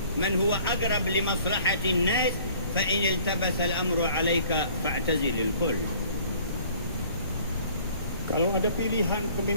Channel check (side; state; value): both; inverted; correlation -0.54